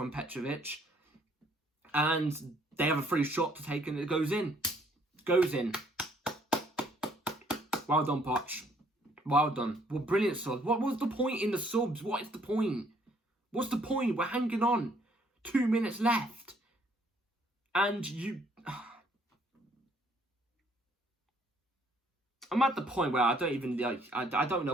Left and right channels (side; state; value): both; normal; correlation 0.64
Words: Petrovic. And they have a free shot to take and it goes in. Goes in. Well done, Poch. Well done. Well, brilliant subs. What was the point in the subs? What is the point? What's the point? We're hanging on. 2 minutes left. And you... I'm at the point where I don't even... I don't